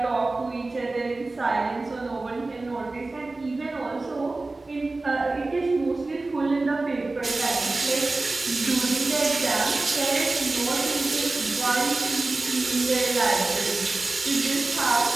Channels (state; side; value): quieter; left; 3.2 dB